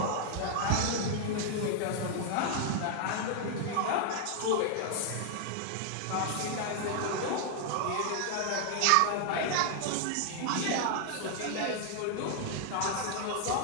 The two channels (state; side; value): different; both; correlation 0.00